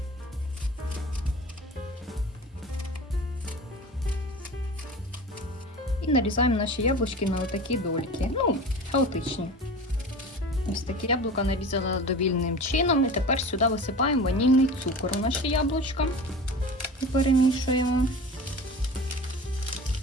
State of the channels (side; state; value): both; normal; correlation 0.35